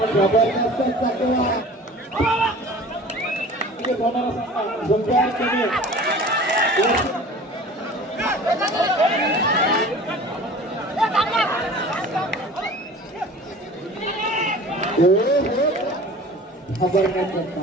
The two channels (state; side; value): normal; both; correlation 0.42